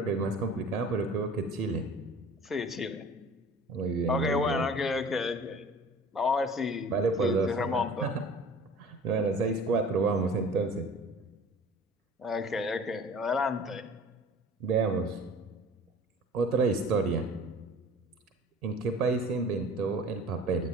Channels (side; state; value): both; normal; correlation 0.44